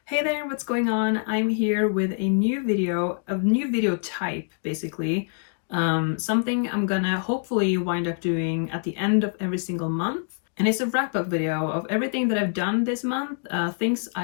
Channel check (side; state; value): right; silent; 62 dB below the other